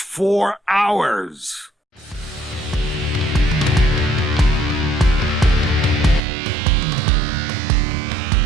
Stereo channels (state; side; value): drops out; left; at 6.2 s